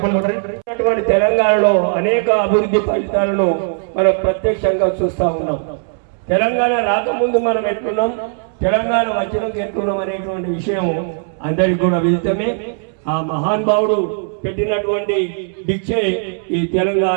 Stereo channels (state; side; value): silent; left; 68 dB below the other